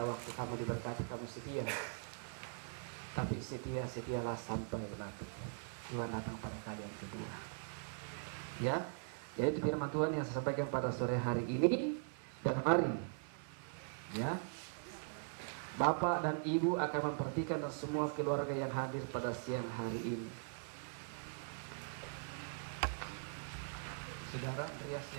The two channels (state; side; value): silent; left; 50 dB below the other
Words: waktu kamu diberkati kamu setia, tapi setialah sampai mati. Tuhan datang pada kali yang kedua. Ya, jadi itu firman Tuhan yang saya sampaikan pada sore hari ini. Dan mari, ya, Bapak dan Ibu akan memperhatikan semua keluarga yang hadir pada siang hari ini. Saudara Andreas